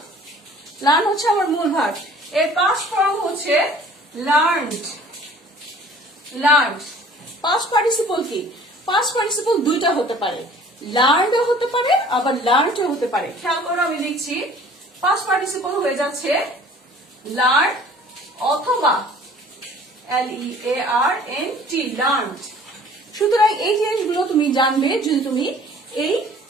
লার্ন হচ্ছে আমার মূল ভার্ব, এর পাস্ট ফর্ম হচ্ছে লার্নড। লার্নড পাস্ট পার্টিসিপল কি? পাস্ট পার্টিসিপল দুইটা হতে পারে, লার্নডও হতে পারে আবার লার্নডও হতে পারে। খেয়াল করো আমি লিখছি পাস্ট পার্টিসিপল হয়ে যাচ্ছে লার্ন অথবা LEARNT লার্নড। সুতরাং এই জিনিসগুলো তুমি জানবে যদি তুমি এই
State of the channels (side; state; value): both; normal; correlation 0.50